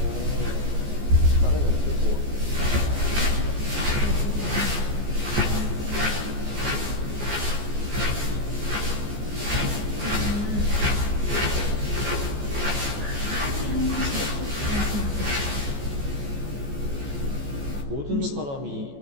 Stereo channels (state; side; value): late; left; 14 ms